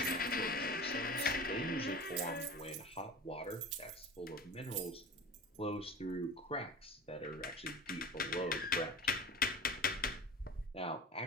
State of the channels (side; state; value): both; normal; correlation 0.35